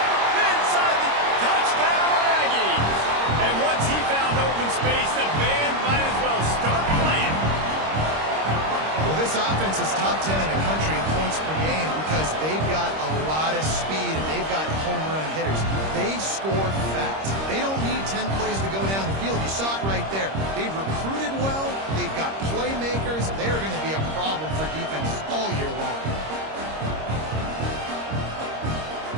Inside the touchdown, Aggies. And once he found open space, the band might as well start playing. Well, this offense is top 10 in the country in points per game because they've got a lot of speed and they've got home run hitters. They score fast. They don't need 10 plays to go down the field. You saw it right there. They've recruited well. They've got playmakers. They're going to be a problem for defenses all year long.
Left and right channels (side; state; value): left; late; 26 ms